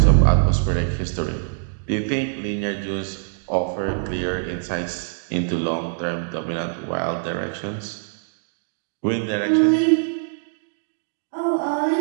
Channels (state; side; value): silent; left; digital silence